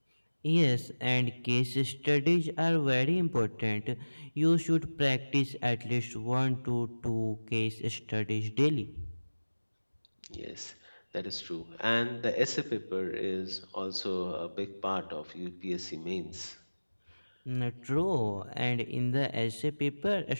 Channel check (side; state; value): both; inverted; correlation -1.00